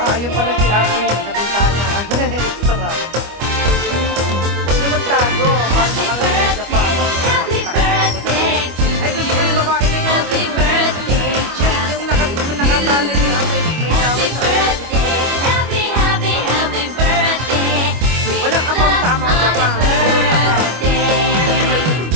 Ayun pala si Armin sa bintana. Extra. Huwag na magtago. Para makarating sa Japan. Happy birthday to Ay, gusto ko yung babae na yun. Happy birthday just Yung nakatalo niya. May tawag sa birthday. Happy birthday. Walang amang sa amang Japan.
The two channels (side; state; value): left; late; 25 ms